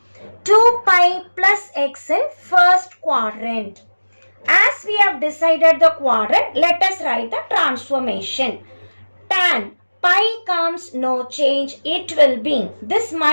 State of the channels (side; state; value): both; inverted; correlation -1.00